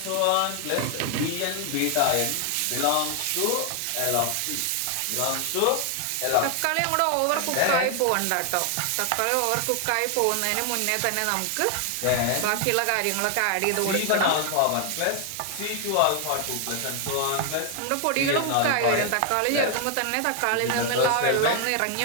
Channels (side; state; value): both; different; correlation 0.00